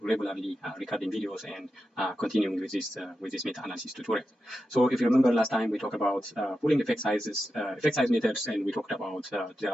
regularly recording videos and continuing with this meta-analysis tutorial. So if you remember last time we talked about pooling effect sizes. Effect size methods, and we talked about there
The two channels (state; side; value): normal; both; correlation 0.89